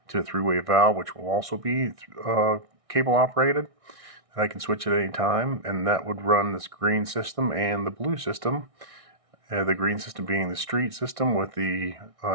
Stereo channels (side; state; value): left; late; 1.6 ms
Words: to a three-way valve which will also be cable operated, and I can switch at any time, and that would run this green system and the blue system. The green system being the street system with the